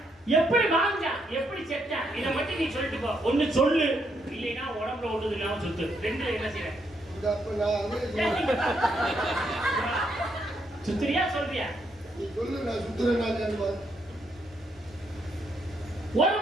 எப்படி வாழ்ந்தா, எப்படி செத்தா, இதை மட்டும் நீ சொல்லிட்டு போ. ஒண்ணு சொல்லு, இல்லைன்னா உடம்புல ஒட்டுது இல்லாம சுத்து. ரெண்டு என்ன செய்ய? சுத்துறியா சொல்றியா? நீ சொல்லு, நான் சுத்துறேன். ஒரு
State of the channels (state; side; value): normal; both; correlation 0.76